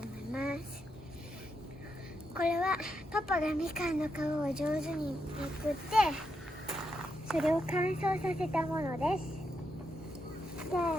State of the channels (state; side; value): normal; both; correlation 0.83